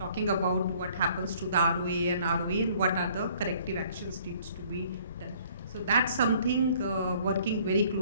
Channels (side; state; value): both; inverted; correlation -0.57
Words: about what happens to the ROA and what are the corrective actions needs to be done. So that's something working very